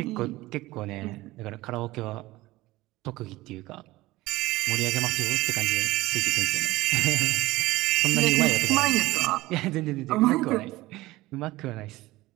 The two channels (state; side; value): quieter; left; 18.7 dB